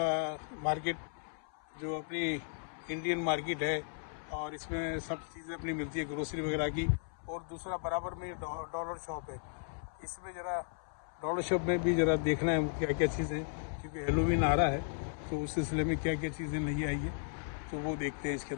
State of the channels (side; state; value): right; silent; 54 dB below the other